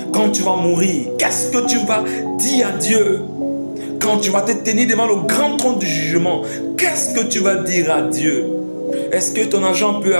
Quand tu vas mourir, qu'est-ce que tu vas dire à Dieu? Quand tu vas te tenir devant le grand trône du jugement, qu'est-ce que tu vas dire à Dieu? Est-ce que ton argent peut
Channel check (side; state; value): both; inverted; correlation -1.00